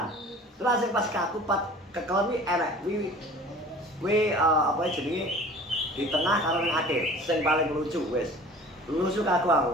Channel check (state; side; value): normal; both; correlation 0.45